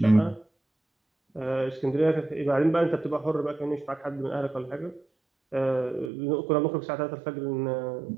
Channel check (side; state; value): left; drops out; at 6.1 s